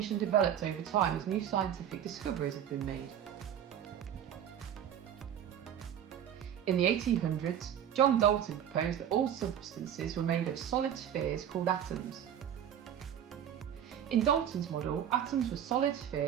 and developed over time as new scientific discoveries have been made. In the 1800s, John Dalton proposed that all substances were made of solid spheres called atoms. In Dalton's model, atoms were solid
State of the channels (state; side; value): quieter; left; 9.7 dB